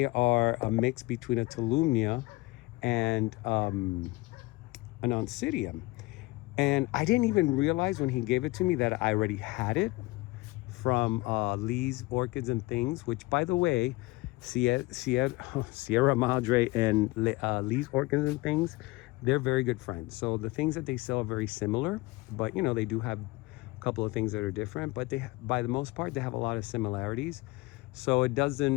are a mix between a Tolumnia and an Oncidium. And I didn't even realize when he gave it to me that I already had it from Lee's Orchids and Things, which, by the way, Sierra Madre and Lee's Orchids and Things, they're very good friends. So the things that they sell are very similar, but you know, they do have a couple of things that are different, but they, by the most part, they have a lot of similarities. So it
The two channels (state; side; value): quieter; right; 22.0 dB